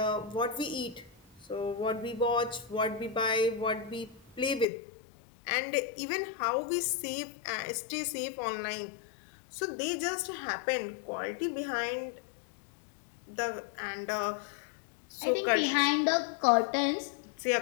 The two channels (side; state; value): right; drops out; at 4.7 s